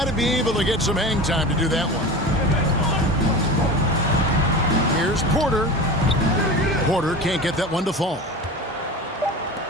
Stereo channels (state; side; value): normal; both; correlation 0.31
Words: to be able to get some hang time to do that one. Here's Porter. Porter can't get that one to fall.